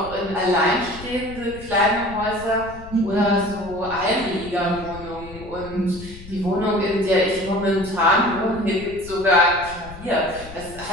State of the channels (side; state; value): left; noise; rumble, 16 dB below the sound